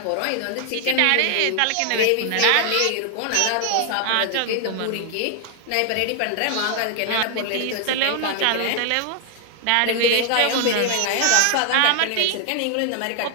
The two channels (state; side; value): different; both; correlation 0.00